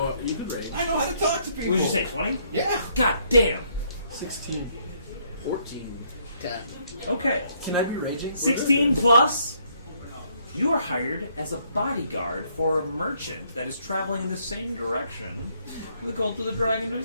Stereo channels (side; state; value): both; inverted; correlation -0.69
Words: rate. I know how to talk to people. what did you say, 20? Yeah. God damn. 16. 14. 10. Okay, Can I be raging? 16 plus, you are hired as a bodyguard for a merchant that is traveling in the same direction the Cult of the Dragon